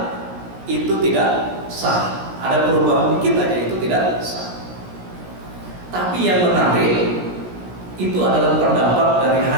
itu tidak sah, ada perubahan dikit aja itu tidak sah. Tapi yang menarik itu adalah pendapat dari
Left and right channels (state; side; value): late; left; 17 ms